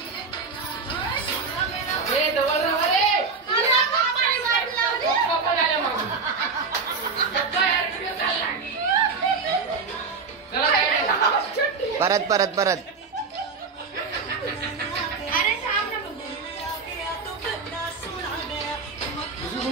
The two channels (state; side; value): quieter; left; 4.7 dB